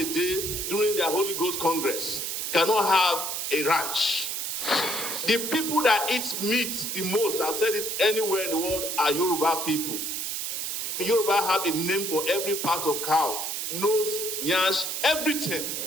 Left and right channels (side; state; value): right; noise; hiss, 3 dB below the sound